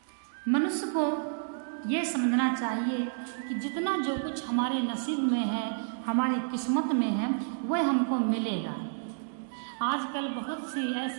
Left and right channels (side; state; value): left; silent; digital silence